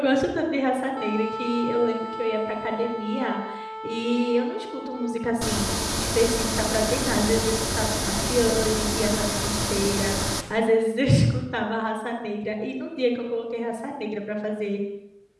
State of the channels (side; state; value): both; identical; correlation 1.00